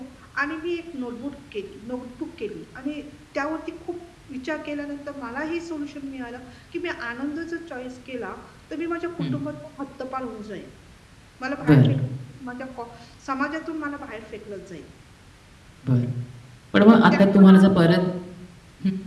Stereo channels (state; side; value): identical; both; correlation 1.00